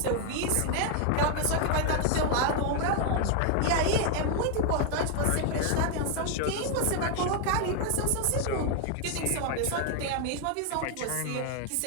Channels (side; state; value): both; different; correlation 0.00